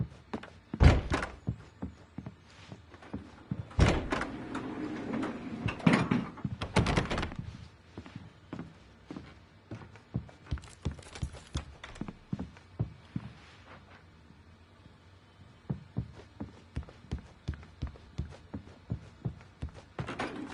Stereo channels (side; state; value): both; identical; correlation 1.00